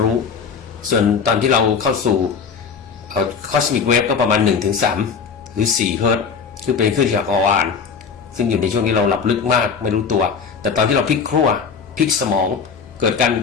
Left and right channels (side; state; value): right; quieter; 6.0 dB